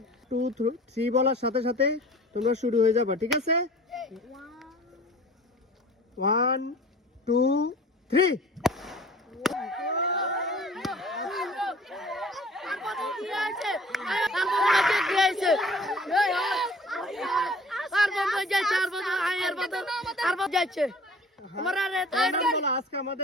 2 3 বলার সাথে সাথে তোমরা শুরু হয়ে যাবে, ঠিক আছে? 1 2 3। আজকে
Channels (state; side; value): normal; both; correlation 0.47